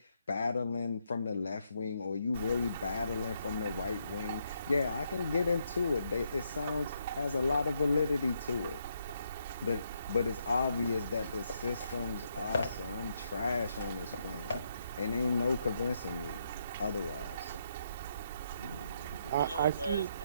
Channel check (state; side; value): inverted; both; correlation -0.77